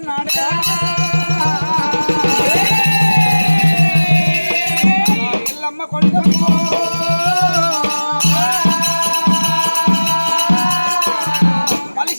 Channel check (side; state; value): both; inverted; correlation -1.00